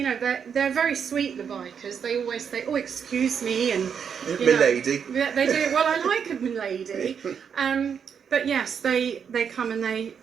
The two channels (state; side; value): quieter; left; 7.2 dB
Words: know, they're very sweet, the bikers. They always say, "Oh, excuse me," and milady. Yeah, they do. Well, I like a milady. But yes, they come and they